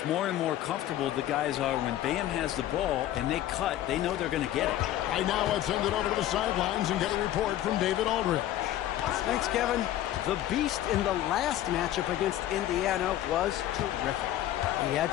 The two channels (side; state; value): right; quieter; 13.1 dB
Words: more and more comfortable the guys are when Bam has the ball and they cut. They know they're going to get it. Right now, let's send it over to the sidelines and get a report from David Aldridge. Thanks, Kevin. The beast in the last matchup against Indiana was terrific. He